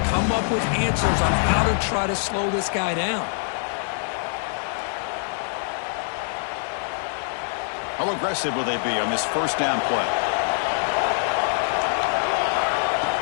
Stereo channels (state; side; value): silent; right; digital silence